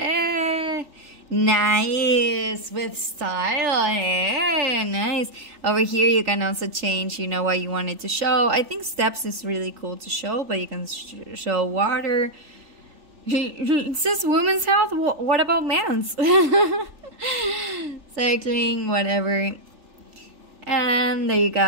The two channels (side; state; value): left; late; 3.4 ms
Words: Nice. With style. Nice. Over here, you can also change, you know, what you want it to show. I think steps is really cool to show, but you can show water. It says women's health. What about man's? Cycling, whatever. And there you